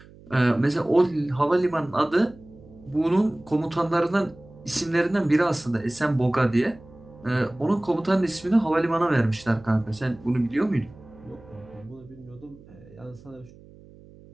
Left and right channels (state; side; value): noise; right; hum, 22 dB below the sound